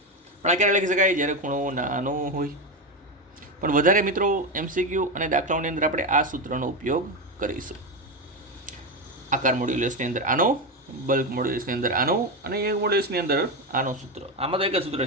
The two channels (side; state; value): both; normal; correlation 0.13